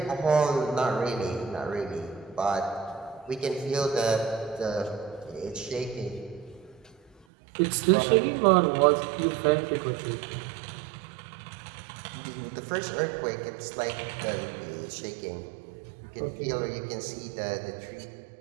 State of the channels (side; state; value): left; drops out; at 7.2 s